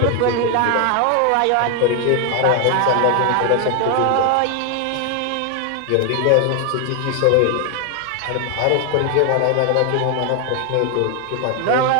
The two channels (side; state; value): both; different; correlation 0.01